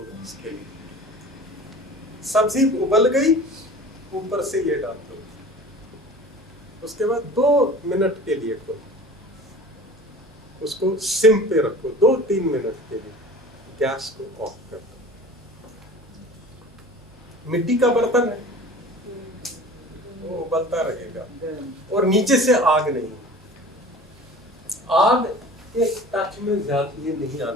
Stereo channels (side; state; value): both; normal; correlation 0.41